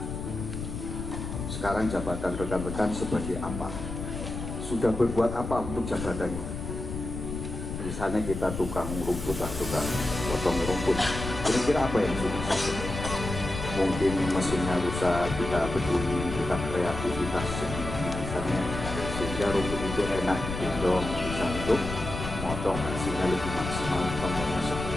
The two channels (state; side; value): noise; left; rumble, 6 dB below the sound